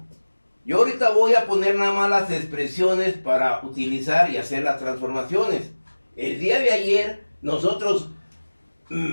yo ahorita voy a poner nada más las expresiones para utilizar y hacer las transformaciones. El día de ayer nosotros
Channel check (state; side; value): inverted; both; correlation -1.00